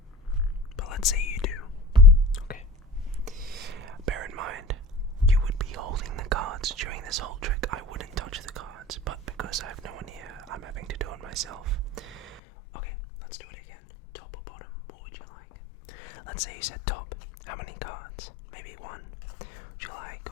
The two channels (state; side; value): drops out; right; at 12.4 s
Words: But let's say you do. Okay. Bear in mind, you would be holding the cards during this whole trick. I wouldn't touch the cards, but because I have no one here, I'm having to do it myself. Okay, let's do it again. Top or bottom, what would you like? Let's say you said top. How many cards? Maybe 1. Would you like